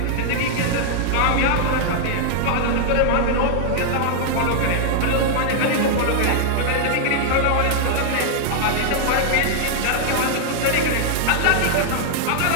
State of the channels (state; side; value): different; both; correlation -0.01